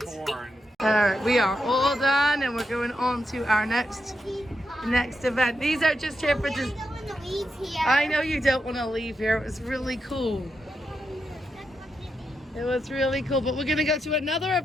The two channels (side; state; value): both; normal; correlation 0.85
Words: Horn. All right, we are all done, and we're going on to our next event. These are just here for just. Go in the weeds here. I know you don't want to leave here. It was really cool. It was really cool, but we're gonna go to another